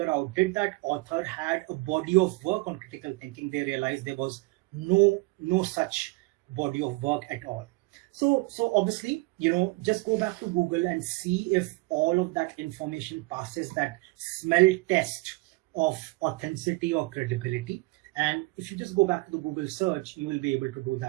out, did that author had a body of work on critical thinking, they realized there was no such body of work at all. So obviously, just go back to Google and see if all of that information passes that smell test of authenticity or credibility. And if you just go back to the Google search, you will be able to do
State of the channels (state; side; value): quieter; left; 24.2 dB